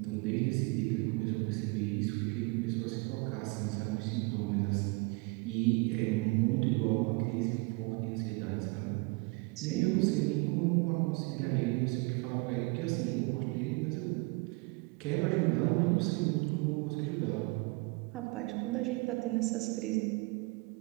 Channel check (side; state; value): left; quieter; 27.4 dB